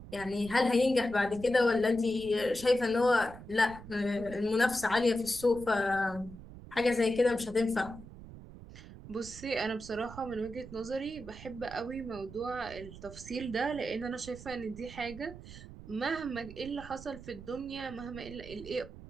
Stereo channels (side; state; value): right; noise; rumble, 15 dB below the sound